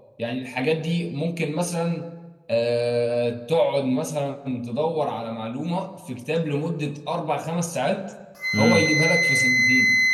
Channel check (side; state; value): both; identical; correlation 1.00